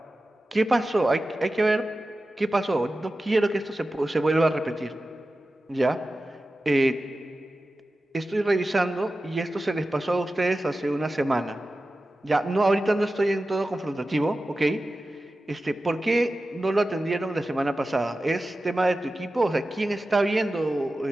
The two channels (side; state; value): both; normal; correlation 0.94